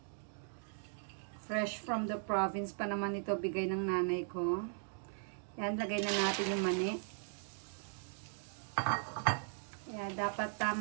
Fresh from the province pa naman ito, bigay ng nanay ko. Yan, lagay na natin yung mani. Yan, dapat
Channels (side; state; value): left; silent; 52 dB below the other